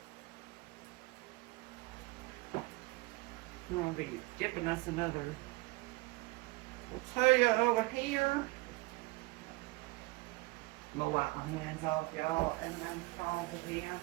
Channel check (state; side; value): quieter; left; 23.3 dB